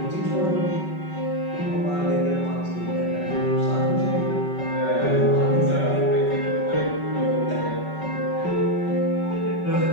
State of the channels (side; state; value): right; late; 5.3 ms